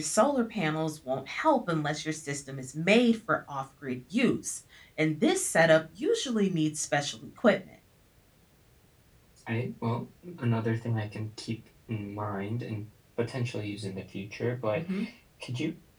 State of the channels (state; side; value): identical; both; correlation 1.00